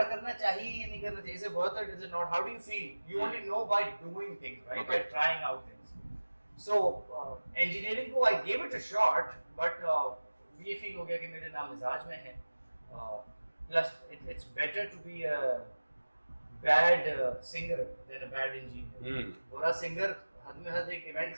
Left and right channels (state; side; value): inverted; both; correlation -1.00